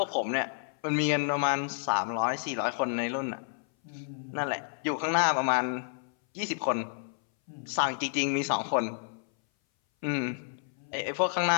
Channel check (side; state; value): right; silent; 58 dB below the other